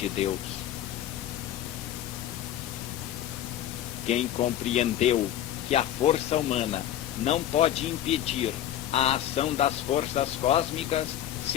Deus. Quem compreendeu que a força humana não pode impedir a ação das forças cósmicas,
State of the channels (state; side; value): quieter; right; 11.7 dB